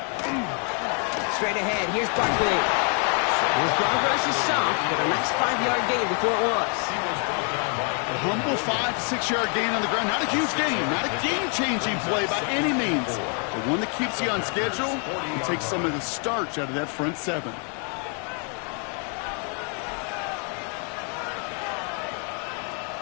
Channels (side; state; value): right; quieter; 39.9 dB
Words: Straight ahead, here's Barkley. His progress is soft, but a nice 5-yard gain before it was. A humble 5 to 6-yard gain on the ground. Not a huge gain, not a game-changing play by any means, but one that keeps you on schedule and takes some of the starch out of that front 7.